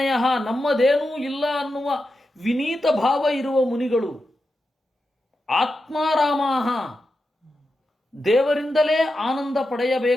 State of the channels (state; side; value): normal; both; correlation 0.89